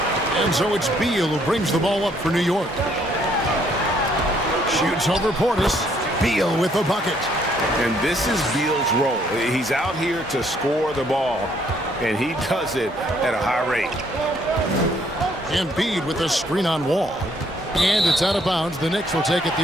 And so it's Beal who brings the ball up for New York. Shoots over Portis. Beal with the bucket. And this is Beal's role. He's out here to score the ball, and he does it at a high rate. Embiid with a screen on Wall. And it's out of bounds. The Knicks will take it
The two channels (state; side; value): normal; both; correlation 0.67